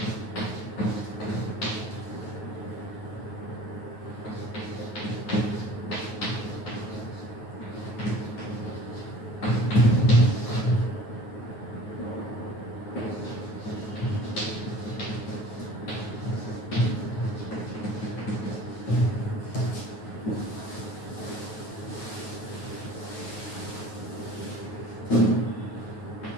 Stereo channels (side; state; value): right; late; 9.4 ms